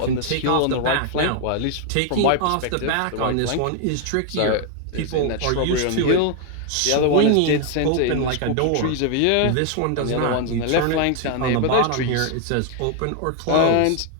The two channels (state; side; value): different; both; correlation 0.00